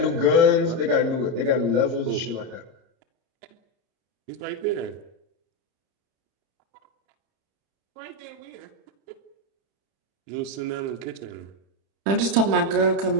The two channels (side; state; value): left; late; 30 ms